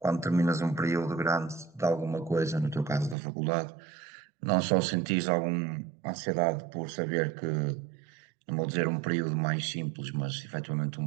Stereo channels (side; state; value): left; drops out; at 3.2 s